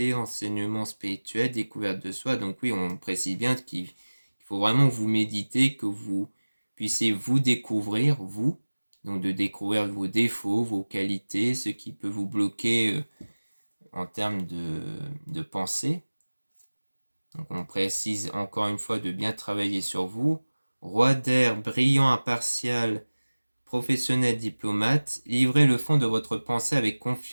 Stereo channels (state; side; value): inverted; both; correlation -1.00